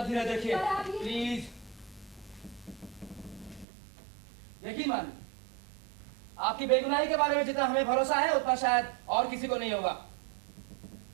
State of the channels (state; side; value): drops out; left; at 3.7 s